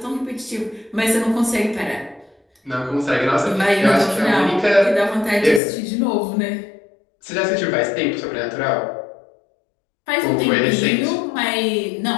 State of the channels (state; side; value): drops out; right; at 5.6 s